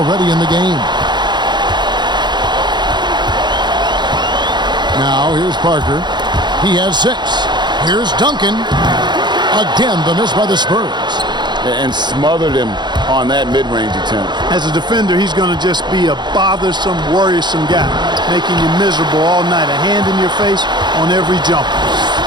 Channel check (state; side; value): late; left; 0.21 ms